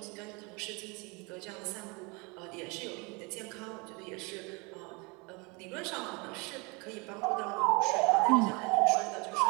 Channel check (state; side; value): quieter; left; 28.6 dB